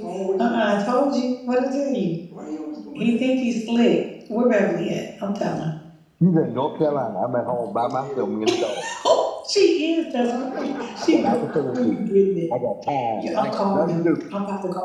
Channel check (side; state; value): both; identical; correlation 1.00